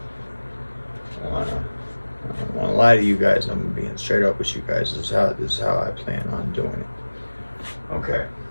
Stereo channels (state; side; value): inverted; both; correlation -1.00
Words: I don't want to lie to you guys. I'm being straight up with you guys. This is how I plan on doing it. Okay.